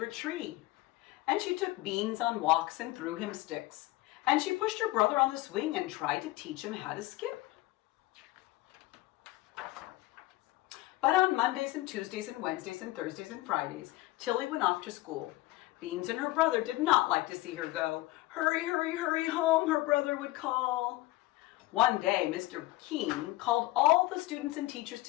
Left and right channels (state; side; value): quieter; right; 18.7 dB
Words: tree. And she took Beans on walks and threw him sticks. And she pushed her brother on the swing and tried to teach him how to skip. But on Mondays and Tuesdays and Wednesdays and Thursdays and Fridays, Tilly went off to school. Beans and her brother did not like to see her go. Hurry, hurry, hurry home, her brother would call. One day, Mr. Keene called all the students and teachers